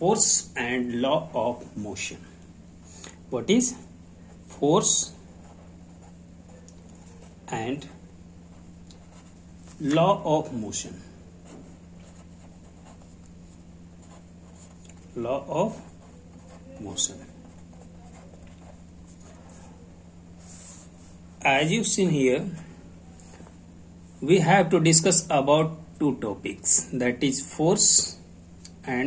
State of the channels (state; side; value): identical; both; correlation 1.00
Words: and law of motion. What is force and law of motion? Law of motion. As you've seen here, we have to discuss about two topics, that is force